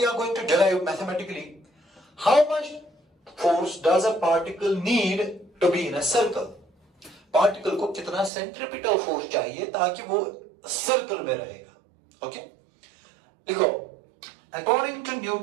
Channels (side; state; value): left; drops out; at 8.3 s